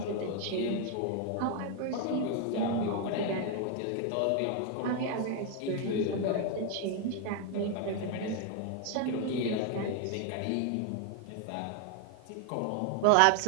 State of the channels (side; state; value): both; different; correlation 0.01